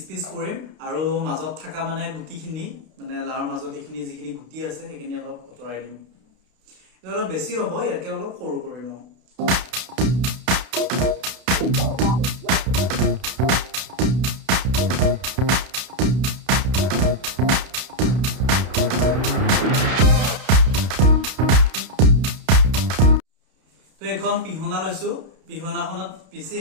পিচ কৰিম আৰু মাজত থকা মানে গুটিখিনি মানে লাউৰ মাজত এইখিনি যিখিনি গুটি আছে সেইখিনি অলপ অতৰাই দিম এটা অলপ বেছি হ'ব ইয়াকে অলপ সৰু কৰি লওঁ তো এখন পিহনা লৈছো পিহনাখনত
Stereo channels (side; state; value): left; late; 32 ms